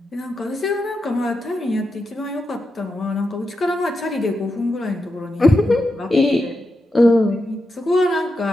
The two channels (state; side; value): normal; both; correlation 0.87